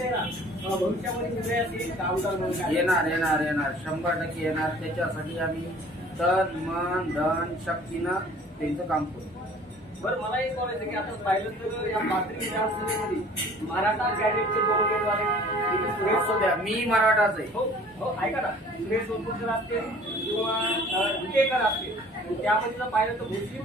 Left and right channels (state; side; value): normal; both; correlation 0.50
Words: भविष्यामध्ये निर्णयास येईल का? आमदार येणार 100% येणार. त्याच्यासाठी आम्ही तन मन धन शक्तीनं त्यांचं काम करू. बरं, मला एक बोलायचं की आता पाहिलं तर या पाथरी विधानसभेमध्ये मराठा कॅडेटचे 2 उमेदवार आहेत. सुरेश सध्या मी मराठाच आहे. हो हो, ऐका ना. सुरेश भरपूरकर असतील किंवा विटेकर असतील. त्यामध्ये पाहिलं तर